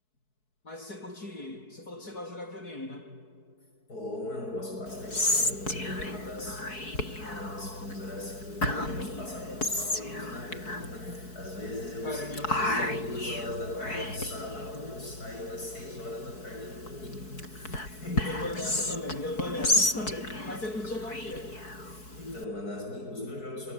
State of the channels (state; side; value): late; right; 4.6 ms